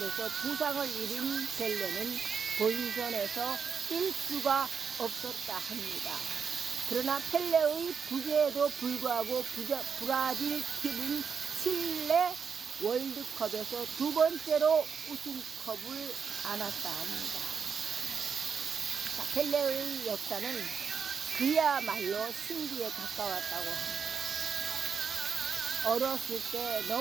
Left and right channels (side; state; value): left; quieter; 6.3 dB